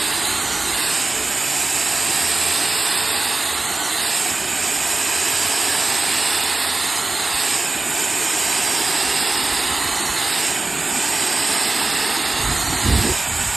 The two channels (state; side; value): quieter; left; 3.2 dB